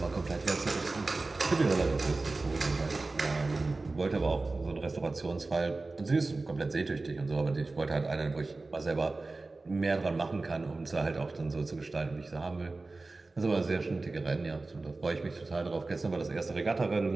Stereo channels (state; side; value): quieter; left; 3.4 dB